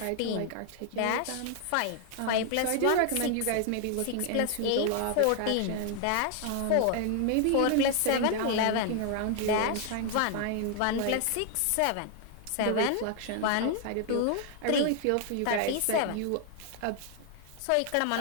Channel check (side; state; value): both; different; correlation 0.00